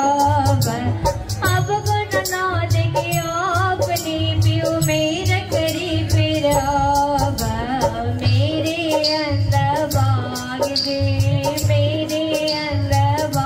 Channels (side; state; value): both; identical; correlation 1.00